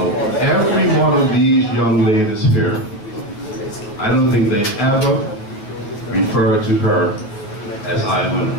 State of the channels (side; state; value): right; late; 9.5 ms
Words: Every one of these young ladies here, I don't think they ever referred to her as Iona.